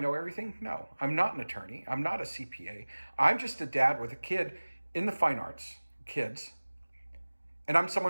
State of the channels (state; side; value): inverted; both; correlation -1.00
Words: everything? No, I'm not an attorney. I'm not a CPA. I'm just a dad with a kid in the fine arts, kids. And I'm